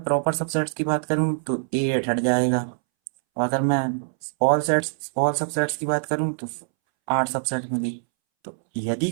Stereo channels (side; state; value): left; silent; 63 dB below the other